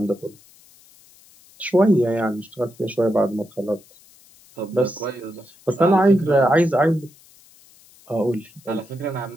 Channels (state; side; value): noise; left; hiss, 27 dB below the sound